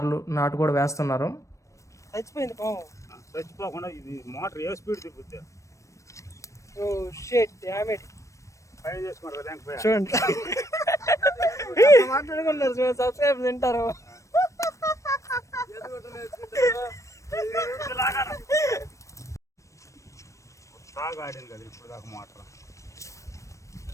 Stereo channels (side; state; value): right; late; 0.15 ms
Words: నాటు కూడా వేస్తున్నారు. చచ్చిపోయింది పాము. చచ్చిపోకుండా ఇది మోటార్ ఏ స్పీడ్ తిప్పుద్ది. Oh shit damn it. పై చేసుకున్నారు లేకపోయా చూడండి మాట్లాడుకున్నారు, సబ్స్క్రైబ్ తింటారు. బాగా ఆడింది కదా ఇప్పుడు దాకా మోటార్.